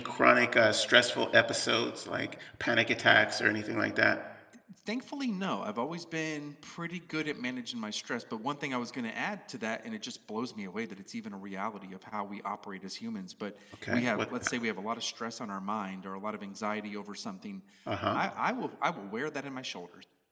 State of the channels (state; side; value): identical; both; correlation 1.00